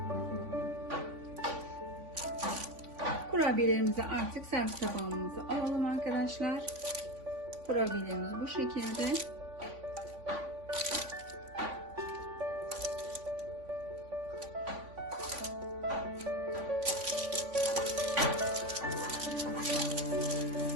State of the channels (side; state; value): left; late; 3.5 ms